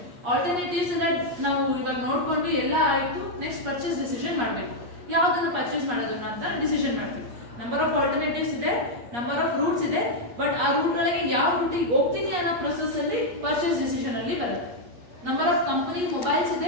ಆಲ್ಟರ್ನೇಟಿವ್ಸ್ ನಾವು ಇವಾಗ ನೋಡ್ಕೊಂಡ್ವಿ, ಎಲ್ಲ ಆಯ್ತು. ನೆಕ್ಸ್ಟ್ ಪರ್ಚೇಸ್ ಡಿಸಿಷನ್ ಮಾಡಬೇಕು. ಯಾವ್ದನ್ನು ಪರ್ಚೇಸ್ ಮಾಡೋದನ್ನ ಅಂತ ಡಿಸಿಷನ್ ಮಾಡ್ತೀವಿ. ನಂಬರ್ ಆಫ್ ಆಲ್ಟರ್ನೇಟಿವ್ಸ್ ಇದೆ, ನಂಬರ್ ಆಫ್ ರೂಟ್ಸ್ ಇದೆ, ಬಟ್ ಆ ರೂಟ್ ಒಳಗೆ ಯಾವ ರೂಟಿಗೆ ಹೋಗ್ತೀನಿ ಅನ್ನೋ ಪ್ರೊಸೆಸ್ ಅಲ್ಲಿ ಪರ್ಚೇಸ್ ಡಿಸಿಷನ್ ಅಲ್ಲಿ ಬರುತ್ತೆ. ನಂಬರ್ ಆಫ್ ಕಂಪನಿ ಮೊಬೈಲ್ಸ್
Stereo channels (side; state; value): left; late; 8.4 ms